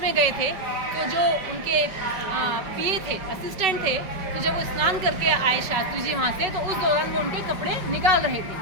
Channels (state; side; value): late; left; 5.4 ms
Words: में गए थे तो जो उनके पीए थे, असिस्टेंट थे, तो जब वो स्नान करके आए शास्त्री जी वहाँ से, तो उस दौरान वो उनके कपड़े निकाल रहे